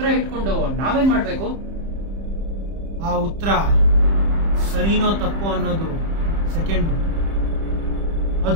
ಇಟ್ಕೊಂಡು ನಾವೇನ್ ಮಾಡ್ಬೇಕು? ಆ ಉತ್ತರ ಸರಿನೋ ತಪ್ಪೋ ಅನ್ನೋದು ಸೆಕೆಂಡ್.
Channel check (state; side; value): late; left; 30 ms